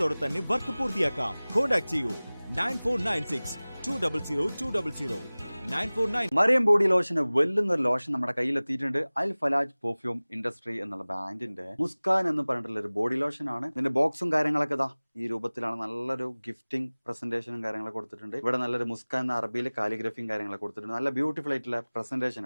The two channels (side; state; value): both; inverted; correlation -1.00